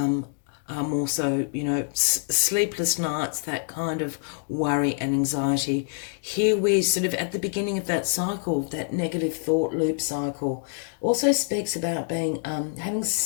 so, you know, sleepless nights, that kind of worry and anxiety. Here we're sort of at the beginning of that cycle, that negative thought loop cycle. Also speaks about being having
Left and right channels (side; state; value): right; silent; 61 dB below the other